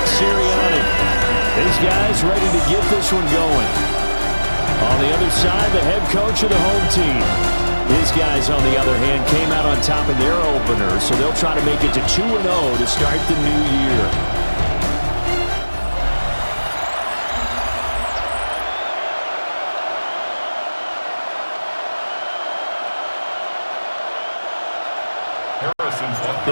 Sirianni. These guys ready to get this one going. On the other side, the head coach of the home team. His guys, on the other hand, came out on top in their opener, so they'll try to make it to 2-0 to start the new year.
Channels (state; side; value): inverted; both; correlation -1.00